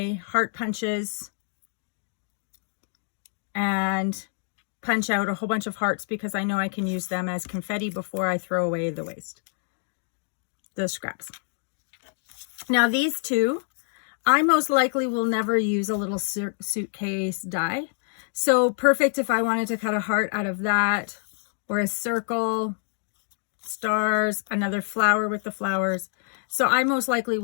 heart punches and punch out a whole bunch of hearts because I know I can use them as confetti before I throw away the waste, the scraps. Now these two, I most likely will never use a little suitcase die. So perfect if I wanted to cut a heart out of that, or a circle, stars, another flower with the flowers. So I most likely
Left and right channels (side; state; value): right; silent; 60 dB below the other